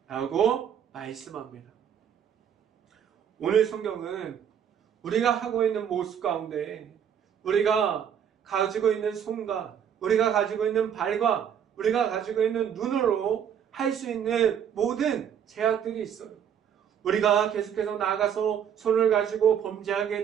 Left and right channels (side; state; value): left; quieter; 8.6 dB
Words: 라고 말씀합니다. 오늘 성경은 우리가 하고 있는 모습 가운데 우리가 가지고 있는 손과 우리가 가지고 있는 발과 우리가 가지고 있는 눈으로 할 수 있는 모든 제약들이 있어요. 우리가 계속해서 나가서 손을 가지고 범죄하게